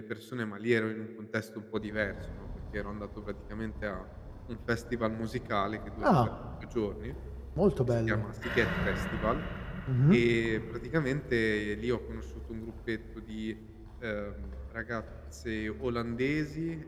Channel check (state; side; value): identical; both; correlation 1.00